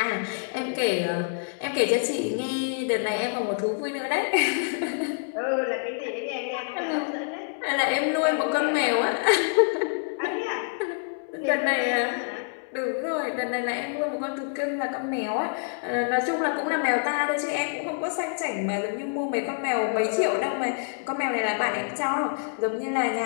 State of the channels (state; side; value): silent; right; 60 dB below the other